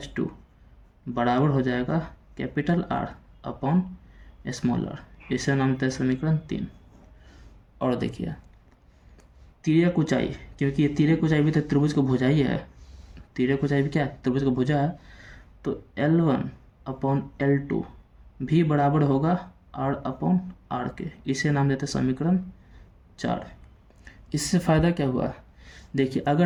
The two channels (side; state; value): both; identical; correlation 1.00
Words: बराबर हो जाएगा capital R upon small r। इसे नाम देते हैं समीकरण 3। और देखिए तिर्यक ऊंचाई, क्योंकि ये तिर्यक ऊंचाई भी तो त्रिभुज का भुजा ही है, तिर्यक ऊंचाई भी क्या है, त्रिभुज का भुजा है। तो L1 अपॉन L2 भी बराबर होगा R अपॉन R के। इसे नाम देते हैं समीकरण 4। इससे फ़ायदा क्या हुआ, देखिए